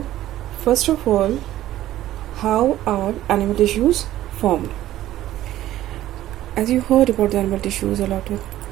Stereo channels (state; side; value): quieter; left; 13.9 dB